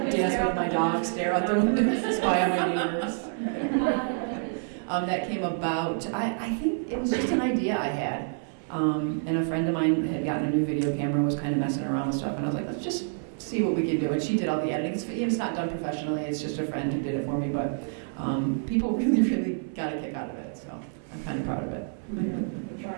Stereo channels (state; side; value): silent; left; 58 dB below the other